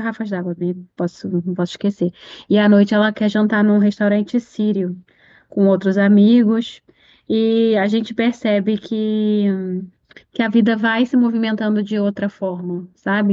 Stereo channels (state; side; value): identical; both; correlation 1.00